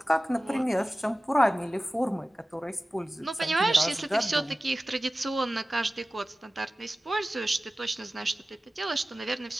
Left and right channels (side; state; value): both; normal; correlation 0.96